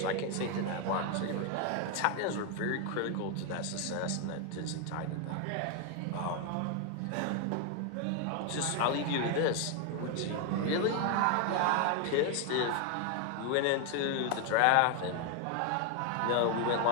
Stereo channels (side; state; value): both; different; correlation 0.01